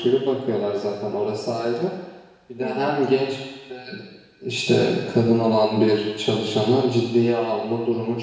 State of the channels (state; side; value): identical; both; correlation 1.00